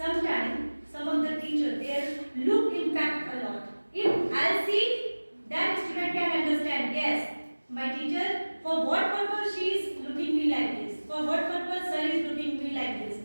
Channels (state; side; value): inverted; both; correlation -1.00